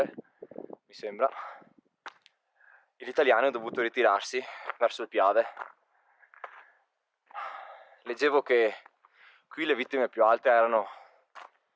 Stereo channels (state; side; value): identical; both; correlation 1.00